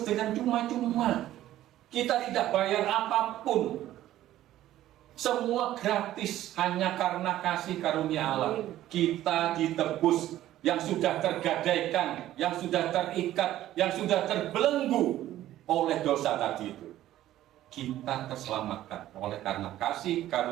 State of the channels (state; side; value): quieter; left; 13.6 dB